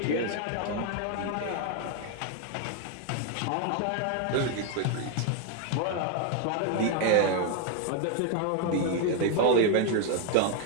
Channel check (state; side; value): different; both; correlation 0.01